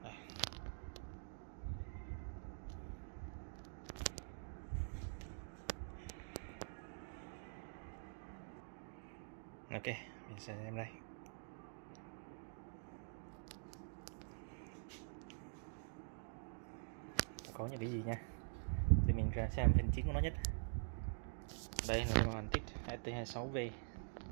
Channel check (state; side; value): silent; left; digital silence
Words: Đây. Ok, mình sẽ xem đây. Có những cái gì nha, thì mình ra xem phần chính của nó nhất. Đây là cái Hàn Tig ST26V,